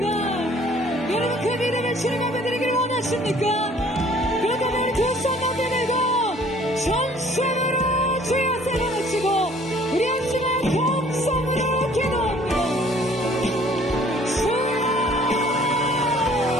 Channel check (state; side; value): normal; both; correlation 0.56